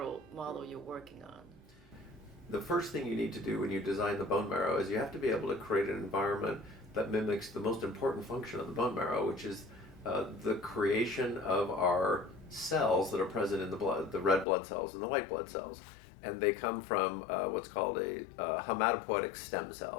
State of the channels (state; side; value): drops out; right; at 14.5 s